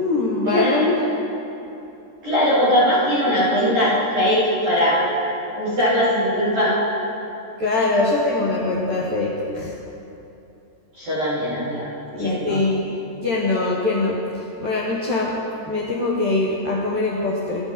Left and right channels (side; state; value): left; late; 13 ms